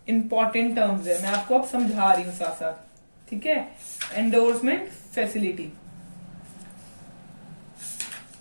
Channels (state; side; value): inverted; both; correlation -1.00